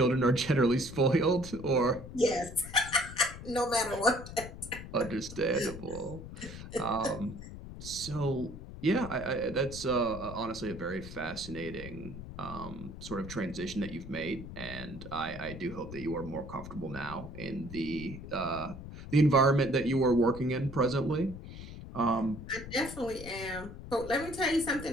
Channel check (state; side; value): noise; left; rumble, 12 dB below the sound